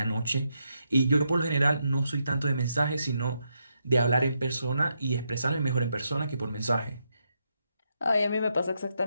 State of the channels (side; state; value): both; inverted; correlation -0.81